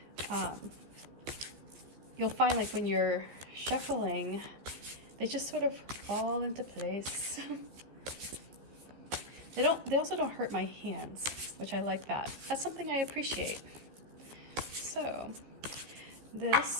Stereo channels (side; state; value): left; late; 15 ms